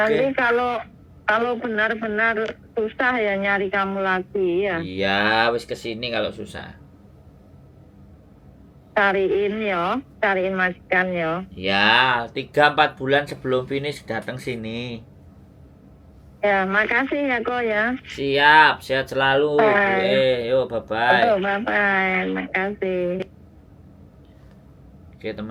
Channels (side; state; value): both; identical; correlation 1.00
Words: kalau benar-benar susah ya nyari kamu lagi ya. Iya, wis kesini kalau susah. Cariin majikan ya. Ya, 3-4 bulan sebelum finish datang sini. Ya, makasih ya kok ya. Siap, sehat selalu. Yo, bye-bye. Bye-bye, makasih. Oke,